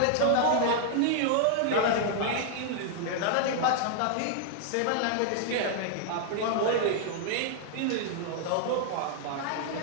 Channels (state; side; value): different; both; correlation 0.00